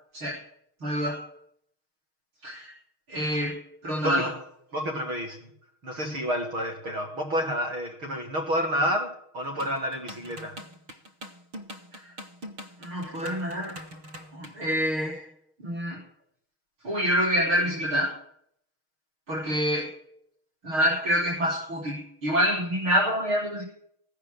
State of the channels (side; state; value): left; late; 6.4 ms